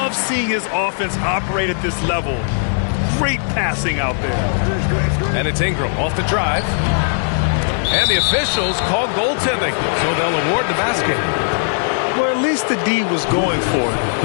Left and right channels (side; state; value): right; silent; digital silence